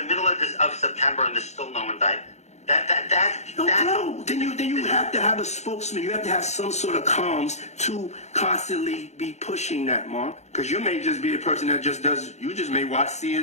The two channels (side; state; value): right; late; 0.33 ms